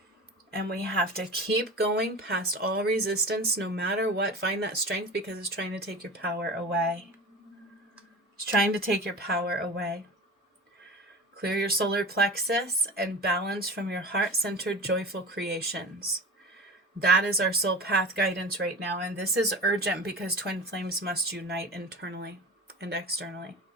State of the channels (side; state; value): both; normal; correlation 0.33